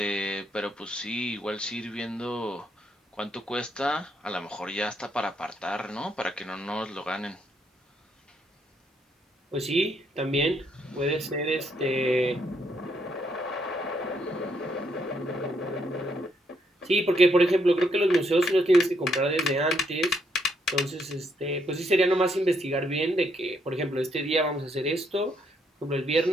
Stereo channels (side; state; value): both; normal; correlation 0.74